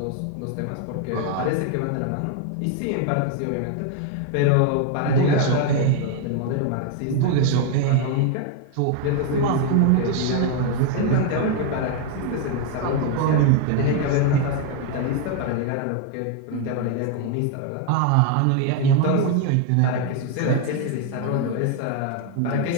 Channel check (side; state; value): both; different; correlation 0.01